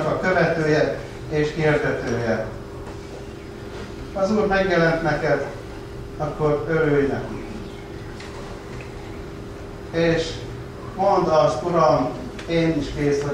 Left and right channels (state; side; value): identical; both; correlation 1.00